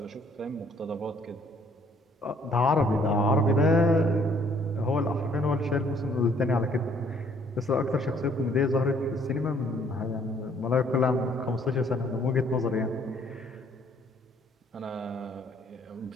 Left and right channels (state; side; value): normal; both; correlation 0.62